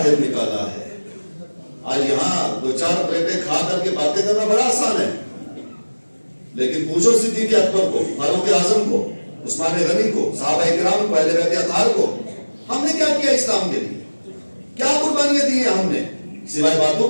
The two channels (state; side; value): inverted; both; correlation -1.00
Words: نکالا ہے؟ آج یہاں دو چار پلیٹیں کھا کر کے باتیں کرنا بڑا آسان ہے، لیکن پوچھو صدیق اکبر کو، فاروق اعظم کو، عثمان غنی کو، صحابہ کرام کو، اہل بیت اطہار کو، ہم نے کیا کیا اسلام کے لیے؟ کیا قربانیاں دی ہیں ہم نے؟ سوائے باتوں